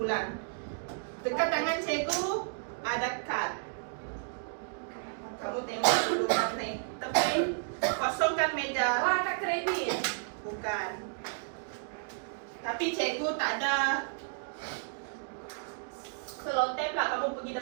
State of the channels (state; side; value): silent; left; digital silence